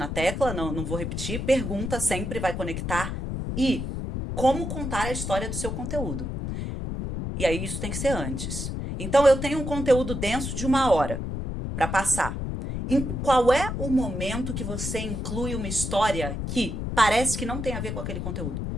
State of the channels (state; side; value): noise; left; rumble, 4 dB below the sound